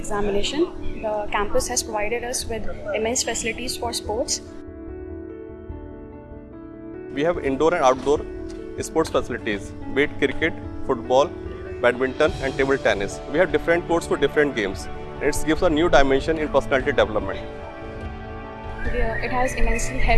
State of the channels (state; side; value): identical; both; correlation 1.00